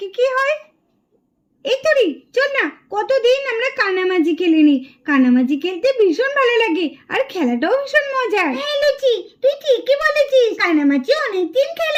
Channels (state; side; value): identical; both; correlation 1.00